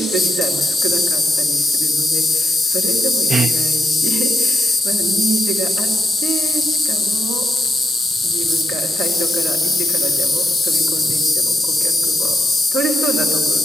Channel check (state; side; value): normal; both; correlation 0.81